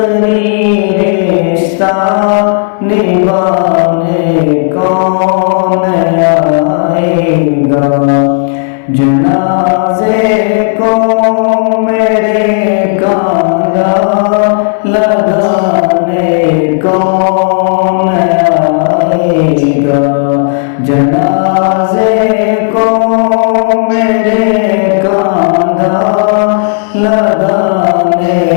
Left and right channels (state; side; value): silent; right; digital silence